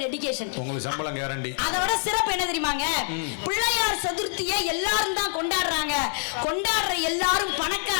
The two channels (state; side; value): silent; right; 59 dB below the other